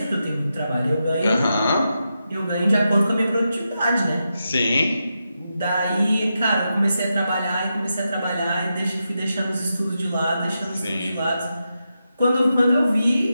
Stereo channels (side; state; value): both; inverted; correlation -0.87